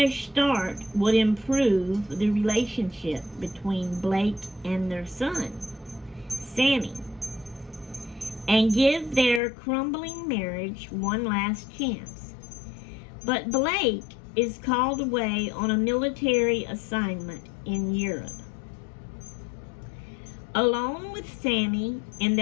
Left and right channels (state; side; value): drops out; right; at 9.4 s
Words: start would improve the relationship between Blake and their son, Sammy, and give their crumbling marriage one last chance. But Blake is called away on a military assignment in Europe. Alone with Sammy in